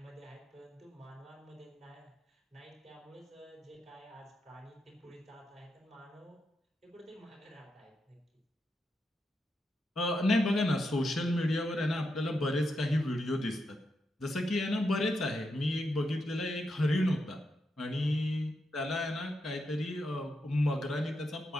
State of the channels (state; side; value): normal; both; correlation 0.84